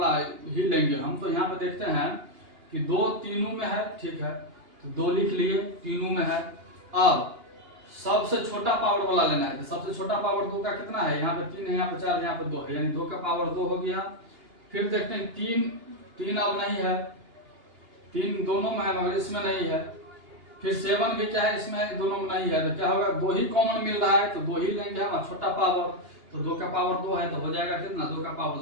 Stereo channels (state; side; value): late; left; 2.8 ms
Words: ही लेंगे हम। तो यहाँ पे देखते हैं कि 2 तीनों में है, ठीक है, तो 2 लिख लिए, तीनों में है। अब सबसे छोटा पावर वाला लेना है, तो सबसे छोटा पावर 2 का कितना है, यहाँ पे 3 है, यहाँ पे 4 है, यहाँ पे 2 है, यानी 2 का पावर 2 हो गया। फिर देखते हैं 3 अब नहीं है, 3 दोनों में है मगर इसमें नहीं है। फिर 7 भी क्या है, इसमें दोनों में नहीं है, तो क्या होगा, 2 ही कॉमन मिल रहा है, तो 2 ही लेंगे हम, छोटा पावर। तो 2 का पावर 2 है, तो हो जाएगा कितना, 2 का पावर